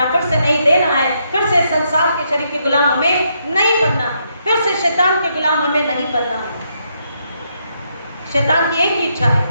फिर से नहीं देना है, फिर से संसार के शरीर के गुलाम हमें नहीं बनना है, फिर से शैतान के गुलाम हमें नहीं बनना है। शैतान की एक ही इच्छा है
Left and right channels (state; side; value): inverted; both; correlation -0.77